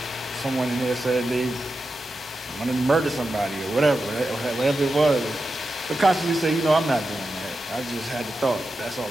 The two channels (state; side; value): normal; both; correlation 0.90